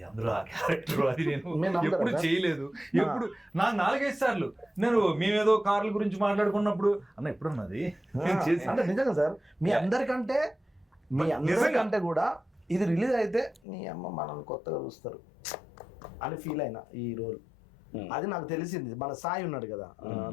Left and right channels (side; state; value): right; drops out; at 13.6 s